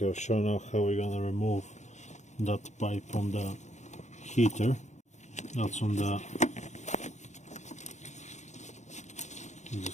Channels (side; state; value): right; late; 0.34 ms